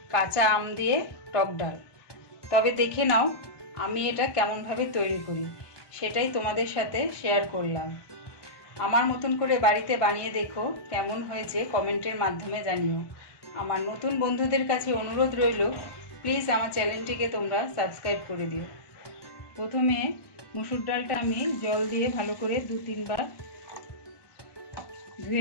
কাঁচা আম দিয়ে টক ডাল। তবে দেখে নাও আমি এটা কেমনভাবে তৈরি করি, সেটাই তোমাদের সাথে শেয়ার করলাম। আমার মতন করে বাড়িতে বানিয়ে দেখো, কেমন হয়েছে কমেন্টের মাধ্যমে জানিও। আমার নতুন বন্ধুদের কাছে অনুরোধ রইল, প্লিজ আমার চ্যানেলটিকে তোমরা সাবস্ক্রাইব করে দিও। প্রথমে মুসুর ডালটা আমি জল দিয়ে ভালো করে 2-3 বার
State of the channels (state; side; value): late; right; 1.2 ms